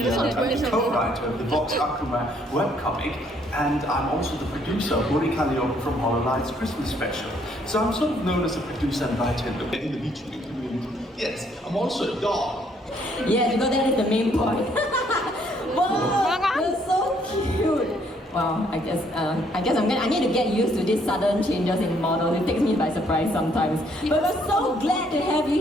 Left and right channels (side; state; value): both; normal; correlation 0.67